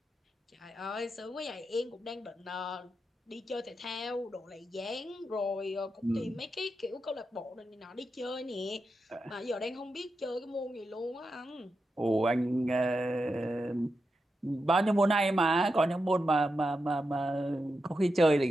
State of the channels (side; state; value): both; normal; correlation 0.88